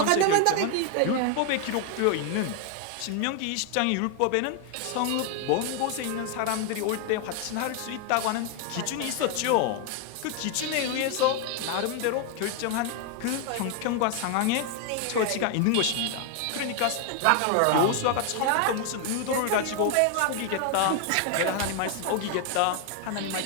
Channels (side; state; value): both; different; correlation 0.01